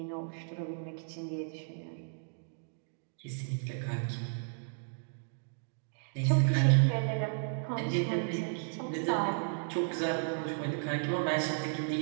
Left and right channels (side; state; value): left; silent; digital silence